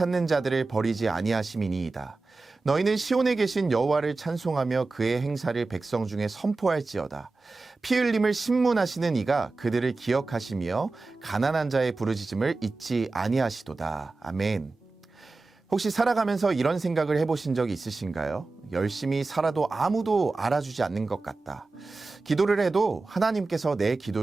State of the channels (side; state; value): left; quieter; 3.6 dB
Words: 자들을 버리지 아니하심이니이다. 너희는 시온에 계신 여호와를 찬송하며 그의 행사를 백성 중에 선포할지어다. 피 흘림을 신문하시는 이가 그들을 기억하시며 가난한 자의 부르짖음을 잊지 아니하시도다. 아멘. 혹시 살아가면서 이런 생각을 해보신 적이 있으신가요? 열심히 살아도 아무도 알아주지 않는 것 같다. 기도를 해도 하나님께서 내